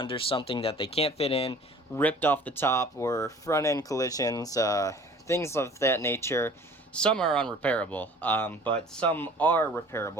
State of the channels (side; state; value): both; normal; correlation 0.48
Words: something that they can't fit in, ripped off the top, or front end collisions, things of that nature. Some are unrepairable, but some are